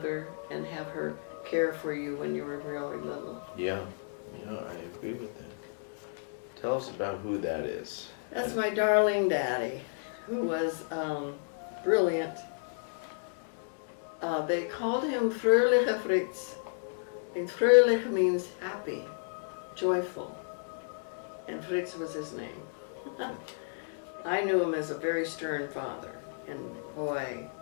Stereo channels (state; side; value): silent; right; digital silence